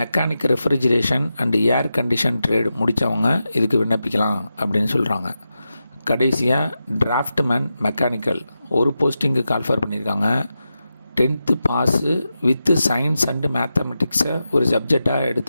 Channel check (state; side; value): inverted; both; correlation -0.90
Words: refrigeration and air condition trade முடித்தவங்க இதுக்கு விண்ணப்பிக்கலாம் அப்படின்னு சொல்கிறாங்க. கடைசியாக டிராஃப்ட்மேன் மெக்கானிக்கல் 1 போஸ்டிங்கு கால்ஃபர் பண்ணியிருக்காங்க. 10th pass with science and மேத்தமெட்டிக்ஸை ஒரு சப்ஜெக்டாக